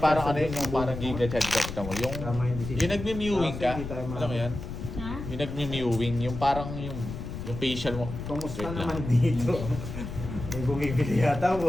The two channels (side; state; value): left; noise; rumble, 7 dB below the sound